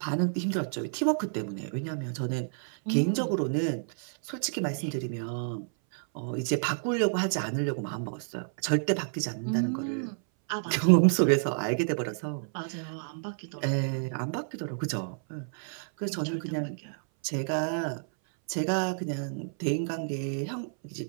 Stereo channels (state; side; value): silent; left; 58 dB below the other